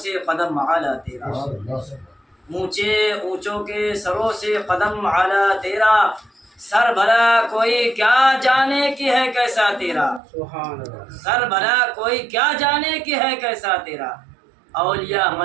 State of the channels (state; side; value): drops out; left; at 10.2 s